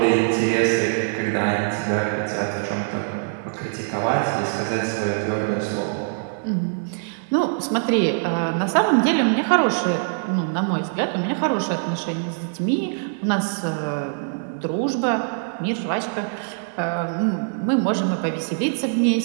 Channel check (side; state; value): left; silent; 62 dB below the other